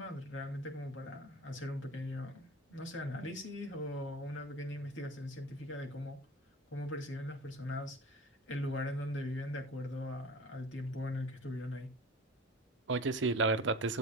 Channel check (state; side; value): normal; both; correlation 0.37